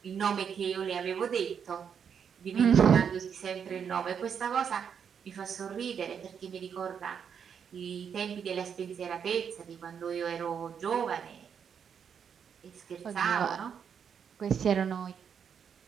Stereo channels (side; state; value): left; quieter; 7.4 dB